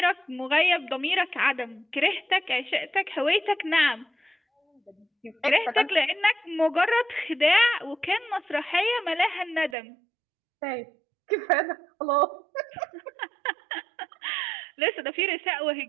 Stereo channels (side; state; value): left; drops out; at 9.8 s